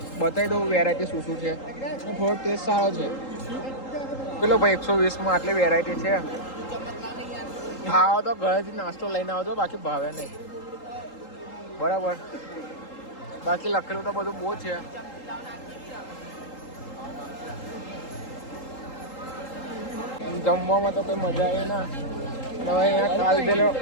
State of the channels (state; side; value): late; right; 3.8 ms